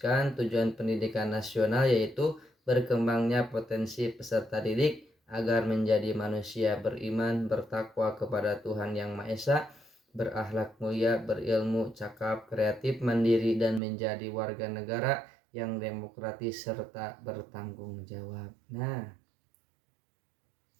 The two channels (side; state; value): left; drops out; at 13.8 s